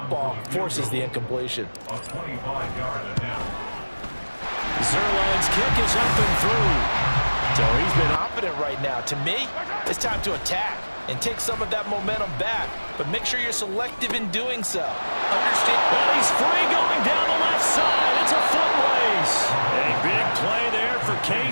Forces the incompletion. Zerline's kick is up and through. So he's been confident right now. To me, it's time to attack and take some of that momentum back. But make sure you're selective in doing so. Understand? Well, he's free going down the left side. It's a foot race. A big play there for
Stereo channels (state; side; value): inverted; both; correlation -1.00